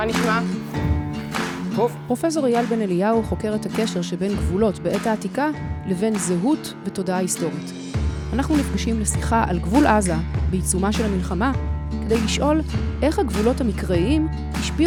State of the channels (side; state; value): both; identical; correlation 1.00